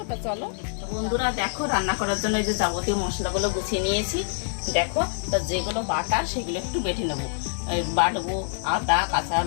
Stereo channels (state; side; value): silent; right; 61 dB below the other